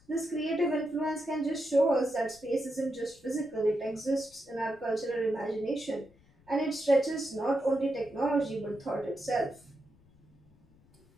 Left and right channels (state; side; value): noise; left; rumble, 29 dB below the sound